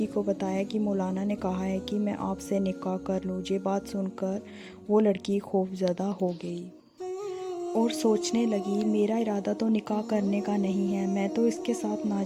کو بتایا کہ مولانا نے کہا ہے کہ میں آپ سے نکاح کر لوں۔ یہ بات سن کر وہ لڑکی خوفزدہ ہو گئی اور سوچنے لگی، میرا ارادہ تو نکاح کرنے کا نہیں ہے، میں تو اس کے ساتھ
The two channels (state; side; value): identical; both; correlation 1.00